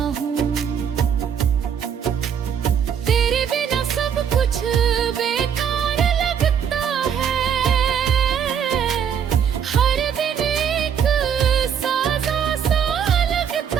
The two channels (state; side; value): quieter; left; 8.0 dB